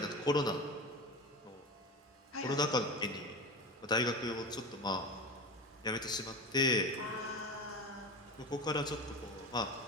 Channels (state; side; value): normal; both; correlation 0.27